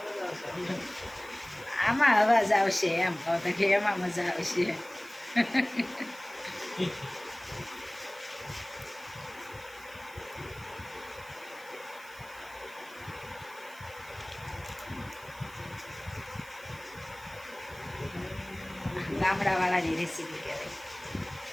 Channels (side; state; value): right; noise; hiss, 21 dB below the sound